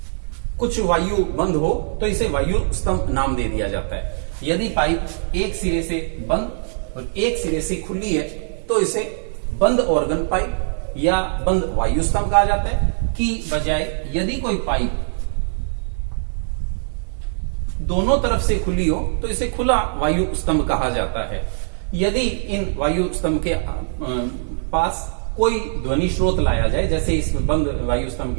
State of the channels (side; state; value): left; silent; digital silence